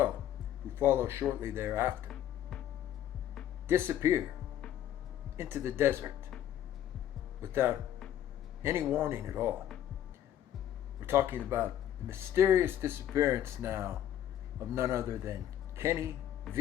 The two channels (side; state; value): right; quieter; 11.2 dB